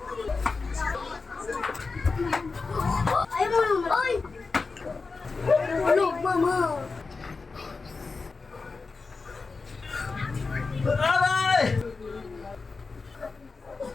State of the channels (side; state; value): right; quieter; 4.2 dB